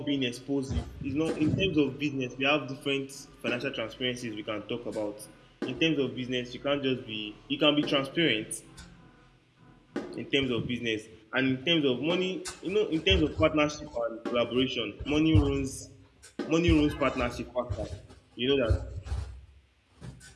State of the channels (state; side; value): identical; both; correlation 1.00